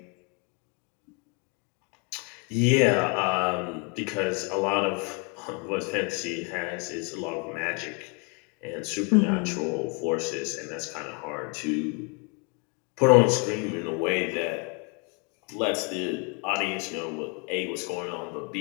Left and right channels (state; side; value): quieter; right; 34.4 dB